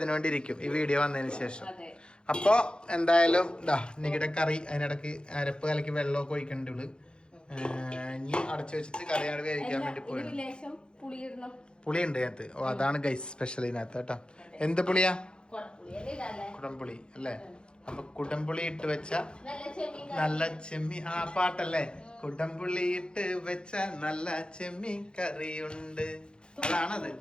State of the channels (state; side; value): late; right; 0.051 ms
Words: ഇരിക്കും ഈ വീഡിയോ വന്നതിന് ശേഷം. അപ്പൊ എന്തായാലും നിങ്ങളുടെ കറി, അതിനിടക്ക് അരപ്പ് കലക്കി വെള്ളമൊക്കെ ഒഴിക്കണ്ടുള്ളു. ഇനി അടച്ചു വെച്ചിട്ട് കറിയാണ് വേവിക്കാൻ വേണ്ടി പോയത്. പുളിയുണ്ട് അതിനകത്ത്. ഓ, അതാണ് ഗൈസ് സ്പെഷ്യൽ ഇതിനകത്ത് കേട്ടോ. എന്ത് പുളിയാ? കുടംപുളി അല്ലേ? അപ്പൊ കുടംപുളി ഇട്ട് വെച്ച നല്ല ചെമ്മീൻ, പാട്ടല്ലേ? കുടംപുളി ഇട്ട് വെച്ച നല്ല ചെമ്മീൻ കറിയുണ്ട്, അതാണത്.